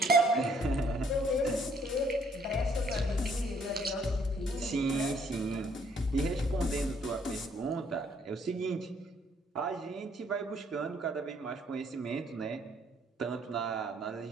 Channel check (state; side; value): normal; both; correlation 0.65